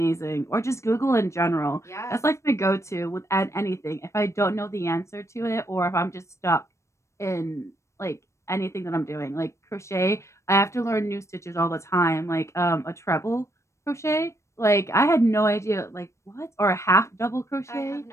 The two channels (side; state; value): right; late; 0.14 ms